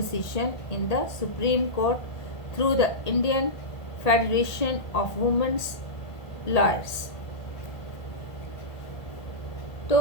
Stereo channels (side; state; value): right; late; 1.8 ms